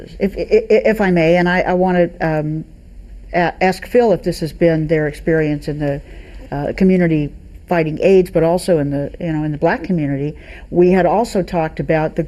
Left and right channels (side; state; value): both; identical; correlation 1.00